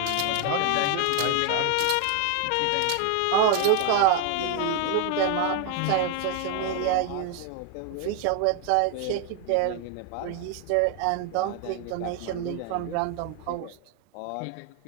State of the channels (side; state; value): both; different; correlation 0.01